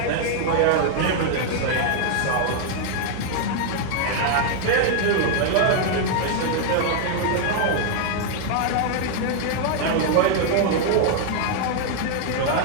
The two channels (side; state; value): both; different; correlation 0.00